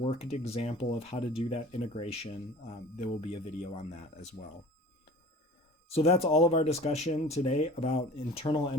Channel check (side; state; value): both; normal; correlation 0.43